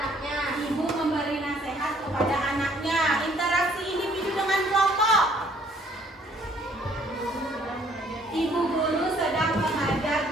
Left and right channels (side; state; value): both; normal; correlation 0.62